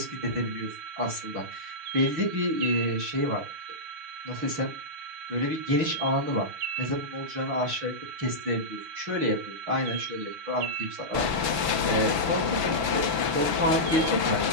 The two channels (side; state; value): left; late; 6.1 ms